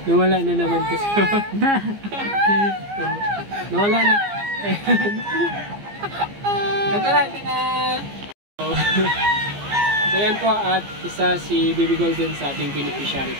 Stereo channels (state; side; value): late; left; 15 ms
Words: Nawala na naman kasi. Nawala na. Ito na. So yan po, at isa si Baby Golden sa ating beneficiary.